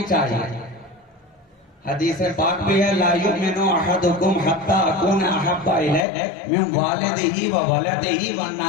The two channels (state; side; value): drops out; right; at 6.1 s